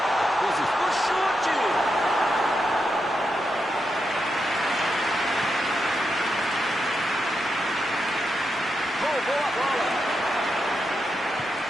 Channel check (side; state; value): both; normal; correlation 0.85